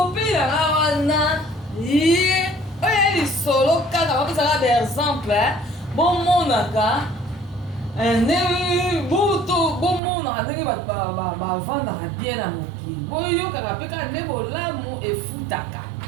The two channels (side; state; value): left; drops out; at 10.0 s